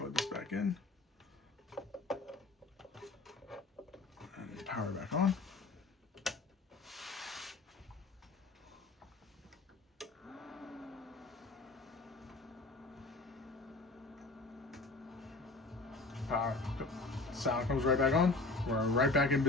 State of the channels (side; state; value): right; quieter; 3.4 dB